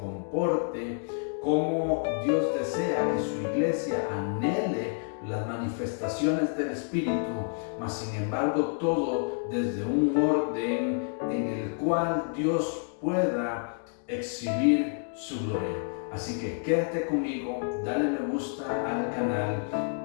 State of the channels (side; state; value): right; silent; 58 dB below the other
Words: cómo Dios desea que su iglesia anhele las manifestaciones del Espíritu, mas sin embargo todo desde un orden en el cual Dios pueda exhibir su gloria. Así que quédate conmigo, dale me gusta al canal,